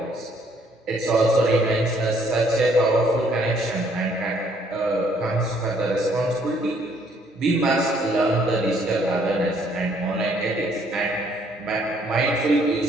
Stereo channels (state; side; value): normal; both; correlation 0.65